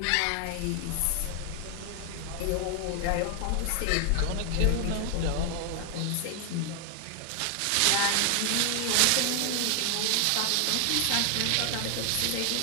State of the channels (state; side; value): different; both; correlation 0.00